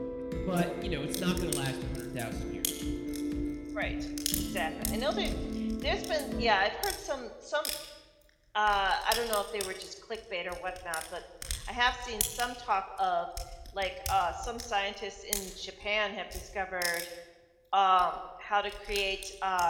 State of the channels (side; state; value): both; identical; correlation 1.00